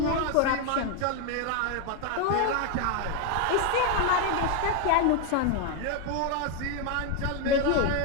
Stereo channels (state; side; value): different; both; correlation 0.01